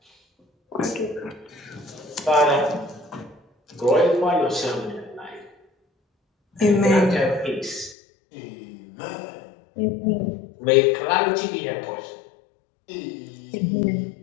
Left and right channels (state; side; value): drops out; right; at 8.0 s